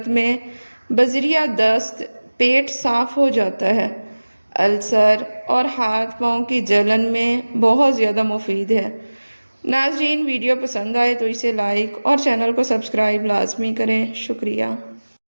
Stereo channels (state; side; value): inverted; both; correlation -1.00